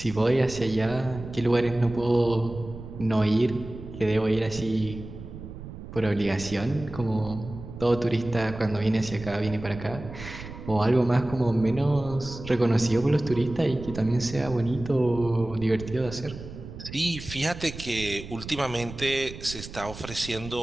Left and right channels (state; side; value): noise; right; rumble, 12 dB below the sound